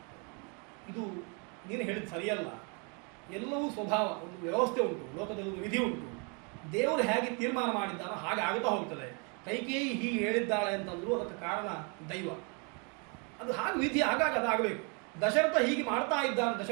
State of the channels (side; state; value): left; quieter; 34.7 dB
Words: ಇದು ನೀನು ಹೇಳಿದ ಸರಿಯಲ್ಲ, ಎಲ್ಲವೂ ಸ್ವಭಾವ, ಒಂದು ವ್ಯವಸ್ಥೆ ಉಂಟು, ಲೋಕದಲ್ಲಿ ಒಂದು ವಿಧಿ ಉಂಟು, ದೇವರು ಹೇಗೆ ತೀರ್ಮಾನ ಮಾಡಿದ್ದಾನೋ ಹಾಗೆ ಆಗುತ್ತಾ ಹೋಗ್ತದೆ. ಕೈಕೇಯಿ ಹೀಗೆ ಹೇಳಿದ್ದಾಳೆ ಅಂತಂದ್ರು ಅದಕ್ಕೆ ಕಾರಣ ದೈವ. ಅದು ಹಾಗೆ ವಿಧಿ, ಹಾಗಾಗಿ ಅದಾಗಬೇಕು. ದಶರಥ ಹೀಗೆ ಮಾಡ್ತಾ ಇದ್ದಾನೆ.